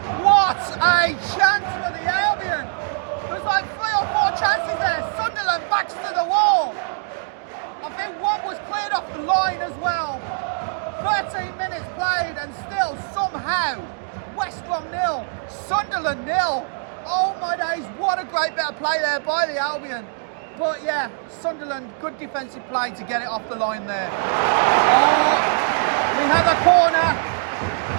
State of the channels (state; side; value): silent; left; digital silence